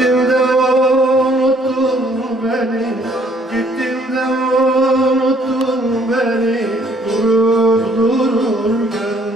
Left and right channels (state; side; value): normal; both; correlation 0.63